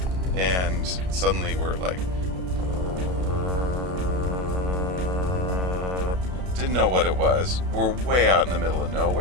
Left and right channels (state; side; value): late; left; 33 ms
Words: and suddenly we're like, didn't know what it was. We're way out in the middle of